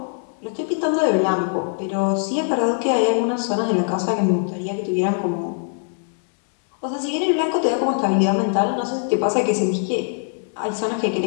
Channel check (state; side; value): silent; right; 64 dB below the other